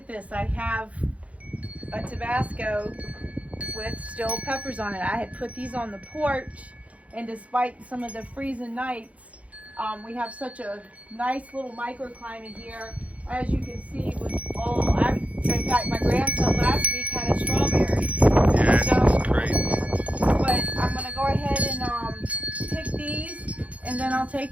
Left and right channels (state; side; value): late; left; 0.065 ms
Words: this. I have a Tabasco with still peppers on it. I had put these on the porch, and despite some of the freezing nights, we have such a nice little microclimate here. As you can see, with in fact, my grandson last week had a strawberry. Yeah, So, it's crazy. but I'm gonna go ahead and pick these, and then I'll